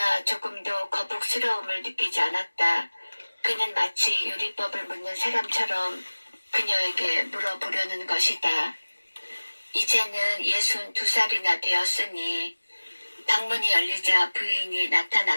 조금도 거북스러움을 느끼지 않았다. 그는 마치 요리법을 묻는 사람처럼 그녀에게 물어보려는 것이다. 이제는 62살이나 되었으니 방문이 열리자 부인이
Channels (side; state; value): both; inverted; correlation -1.00